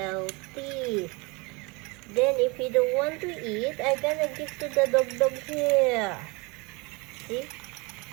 Then if you don't want to eat, I'm gonna give to the dog here. See?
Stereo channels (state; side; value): quieter; left; 27.7 dB